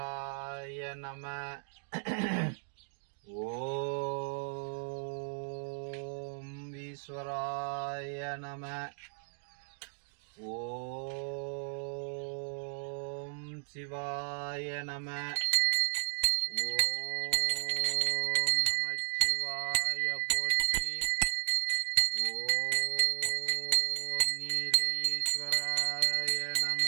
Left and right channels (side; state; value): left; silent; digital silence